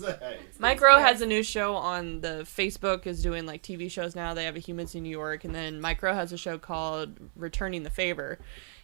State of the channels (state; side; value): silent; left; 59 dB below the other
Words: Mike Rowe has a new show on the Facebook, is doing like TV shows now. They have a Humans in New York, and then Mike Rowe has a show called Returning the Favor,